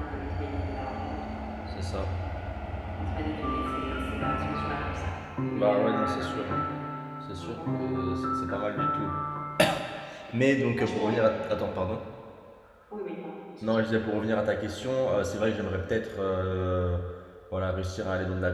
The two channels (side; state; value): both; identical; correlation 1.00